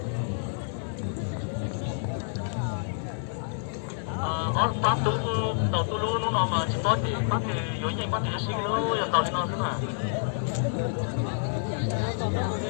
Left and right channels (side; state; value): right; silent; digital silence